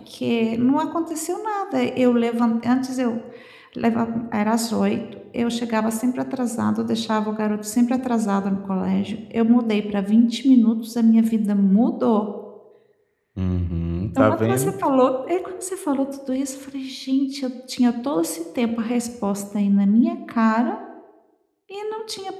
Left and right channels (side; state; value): both; identical; correlation 1.00